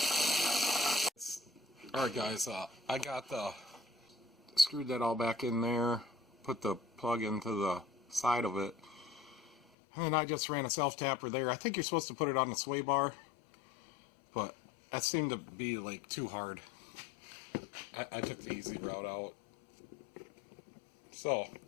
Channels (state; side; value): drops out; right; at 9.6 s